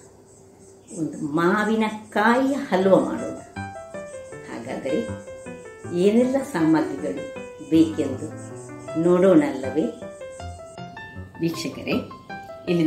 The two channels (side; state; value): both; identical; correlation 1.00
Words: ಒಂದು ಮಾವಿನಕಾಯಿಯ ಹಲ್ವ ಮಾಡೋಣ. ಹಾಗಾದರೆ ಏನೆಲ್ಲ ಸಾಮಗ್ರಿಗಳು ಬೇಕೆಂದು ನೋಡೋಣಲ್ಲವೇ ವೀಕ್ಷಕರೇ? ಇಲ್ಲಿ